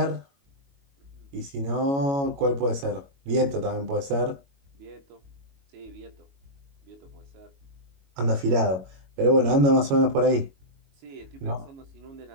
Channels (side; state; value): left; late; 22 ms